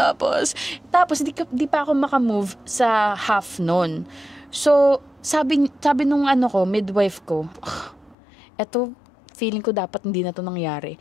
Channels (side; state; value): right; drops out; at 8.2 s